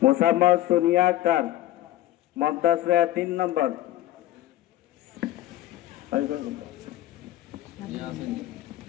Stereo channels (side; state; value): right; quieter; 14.3 dB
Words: মুসাম্মদ সোনিয়া আক্তার মমতাজ 3 নম্বর।